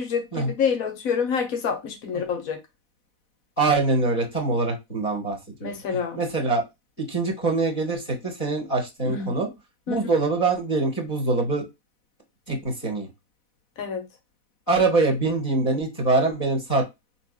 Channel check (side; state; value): right; late; 4.1 ms